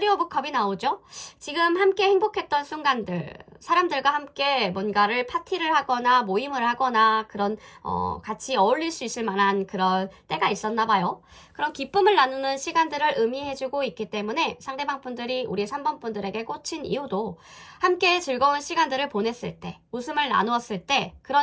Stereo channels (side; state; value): both; identical; correlation 1.00